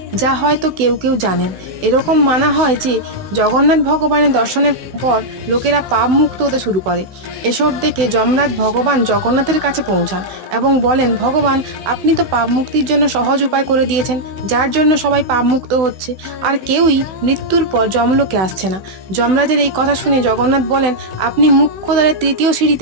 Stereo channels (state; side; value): late; left; 16 ms